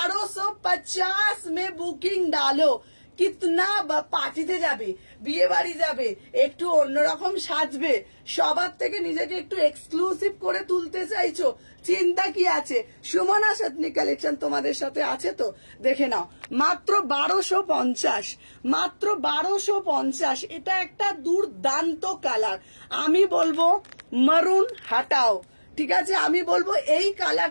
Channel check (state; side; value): inverted; both; correlation -1.00